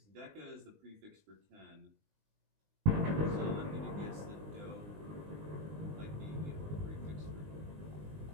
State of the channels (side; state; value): left; late; 20 ms